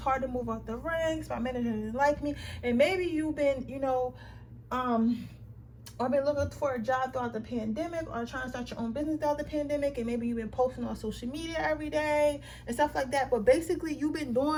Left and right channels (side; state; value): both; identical; correlation 1.00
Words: to move up the ranks, my manager didn't like me. And maybe you've been or been looking for a job throughout the pandemic, or trying to start your own business throughout the pandemic, and maybe you've been posting on social media every day and stuff like that. But basically you've been